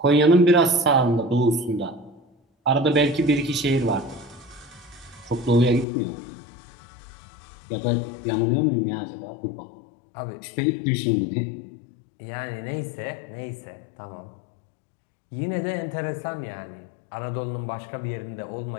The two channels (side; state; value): right; drops out; at 5.9 s